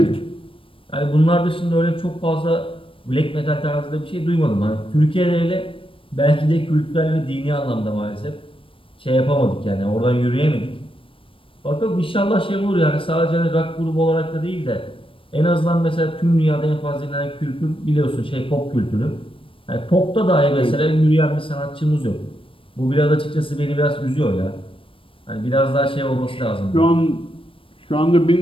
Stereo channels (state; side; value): late; right; 0.25 ms